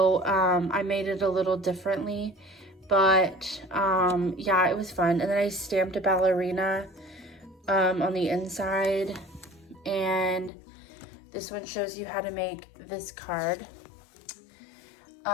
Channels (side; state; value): right; drops out; at 10.5 s